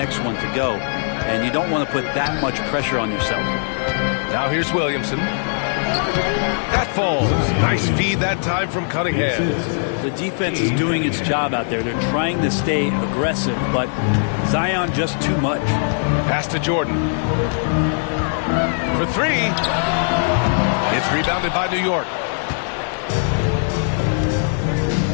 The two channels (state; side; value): silent; right; digital silence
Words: one to go. And you don't want to put that much pressure on yourself. Now here's Williamson. That falls. Nice feed that time from Cunningham. The defense is doing its job out there. They're trying to stay aggressive, but Zion just too much. Pass to Jordan. For 3. It's rebounded by New York.